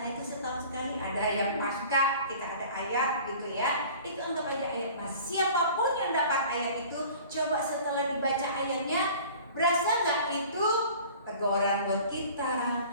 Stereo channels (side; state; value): both; inverted; correlation -0.45